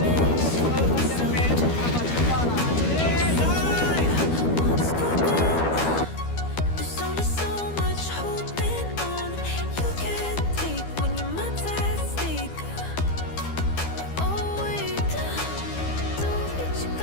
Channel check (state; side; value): late; right; 12 ms